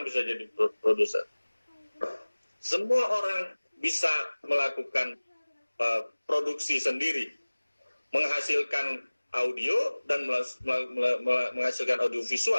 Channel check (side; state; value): both; inverted; correlation -1.00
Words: bisa jadi produser. Semua orang bisa melakukan produksi sendiri, menghasilkan audio dan menghasilkan audio